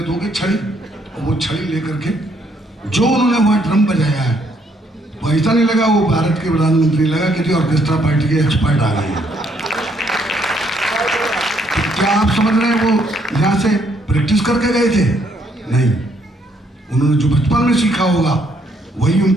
छड़ी, और वो छड़ी लेकर के जो उन्होंने वहाँ ड्रम बजाया है, तो ऐसा नहीं लगा वो भारत के प्रधानमंत्री, लगा कि ऑर्केस्ट्रा पार्टी के एक्सपर्ट आ गए हैं। तो क्या आप समझ रहे हैं वो यहाँ से प्रैक्टिस करके गए थे? नहीं, उन्होंने जो बचपन में सीखा होगा वही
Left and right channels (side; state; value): both; normal; correlation 0.70